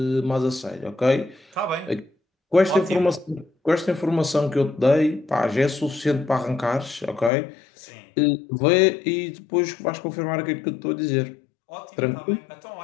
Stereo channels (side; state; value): right; drops out; at 7.3 s